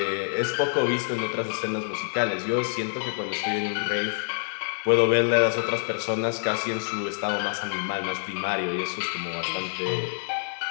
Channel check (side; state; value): right; silent; digital silence